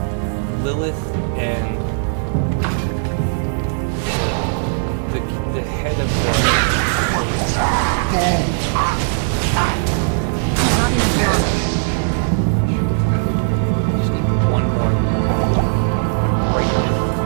Lilith and the head of the... Not enough mana. Just need one more right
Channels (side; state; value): left; silent; 67 dB below the other